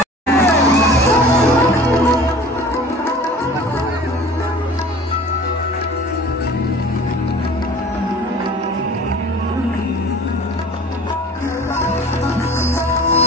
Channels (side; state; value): both; normal; correlation 0.44